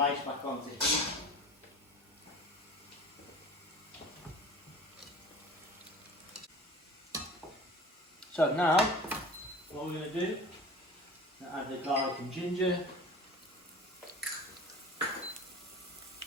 back onto heat. So now, what we're going to do, add the garlic and ginger,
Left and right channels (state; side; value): normal; both; correlation 0.40